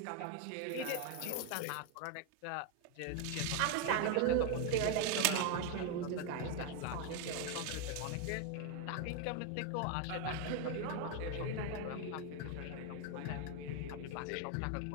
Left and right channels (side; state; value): both; different; correlation 0.01